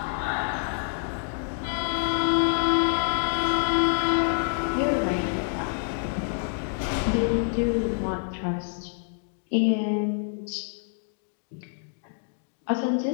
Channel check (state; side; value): silent; right; 60 dB below the other